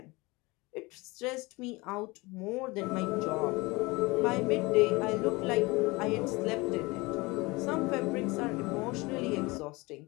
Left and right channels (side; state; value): right; quieter; 23.7 dB